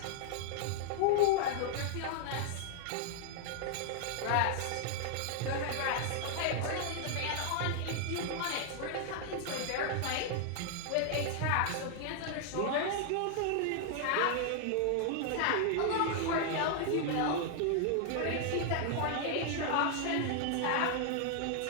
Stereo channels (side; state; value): both; different; correlation -0.01